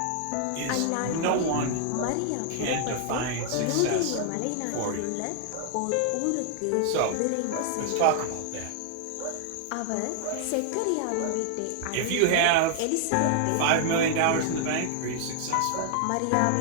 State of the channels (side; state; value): both; different; correlation 0.00